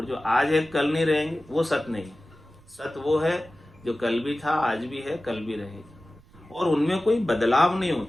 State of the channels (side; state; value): right; noise; rumble, 27 dB below the sound